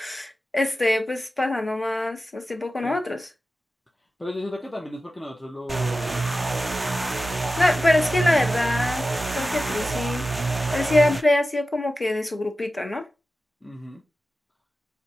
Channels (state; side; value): normal; both; correlation 0.93